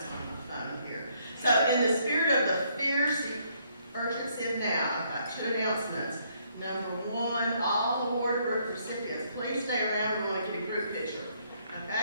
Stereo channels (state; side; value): inverted; both; correlation -0.69